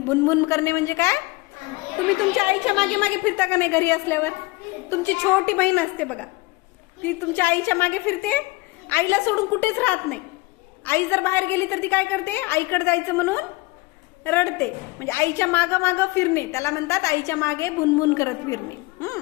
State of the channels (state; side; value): quieter; right; 23.9 dB